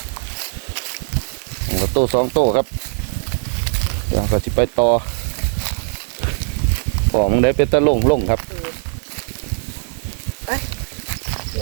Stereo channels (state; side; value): silent; left; digital silence